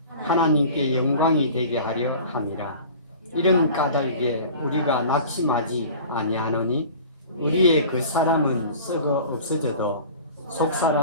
하나님께 영광이 되게 하려 함이라. 이런 까닭에 우리가 낙심하지 아니하노니 우리의 그 사람은 썩어 없어져도 속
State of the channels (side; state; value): both; inverted; correlation -0.42